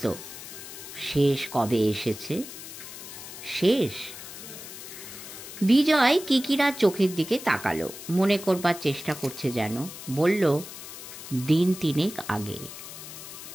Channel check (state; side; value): noise; left; hiss, 12 dB below the sound